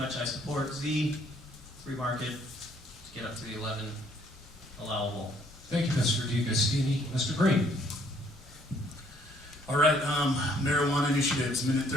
I support Z, free market, to get up to the 11 allowable. Thank you, Mr. DiGustini. Mr. Green. All right, marijuana initiatives, minute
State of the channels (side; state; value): both; normal; correlation 0.64